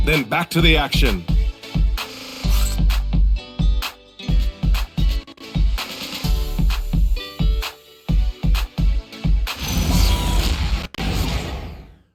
then back to the action.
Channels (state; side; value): identical; both; correlation 1.00